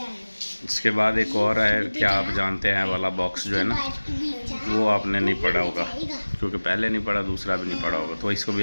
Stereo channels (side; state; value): both; inverted; correlation -1.00